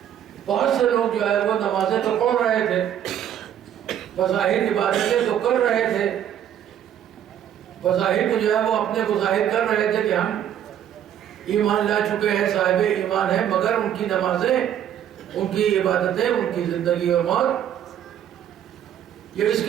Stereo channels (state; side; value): quieter; left; 10.1 dB